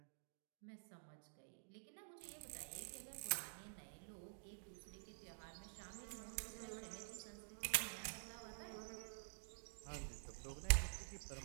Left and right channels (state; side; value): silent; left; digital silence